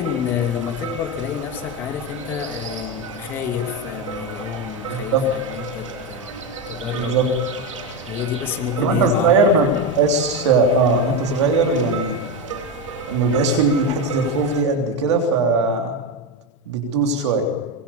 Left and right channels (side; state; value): both; normal; correlation 0.13